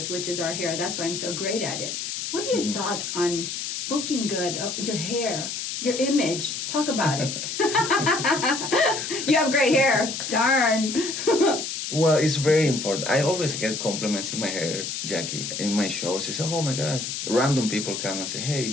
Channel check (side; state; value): left; noise; hiss, 5 dB below the sound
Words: which is our hair. That's why I'm so great at it. What are your thoughts on looking good, your hair, your image? Talk about it. You have great hair. Darn. Well, it's very important. I always get compliments in my hair, Jackie, in my shows. They say, "Oh my gosh!" Random people come and say, "Hey,